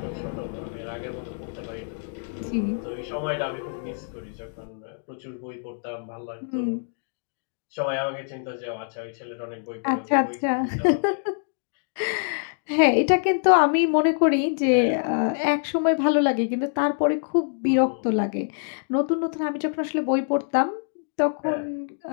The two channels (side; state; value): right; silent; digital silence